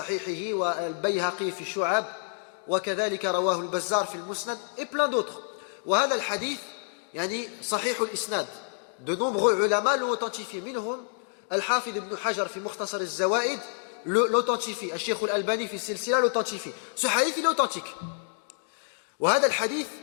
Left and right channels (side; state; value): right; silent; digital silence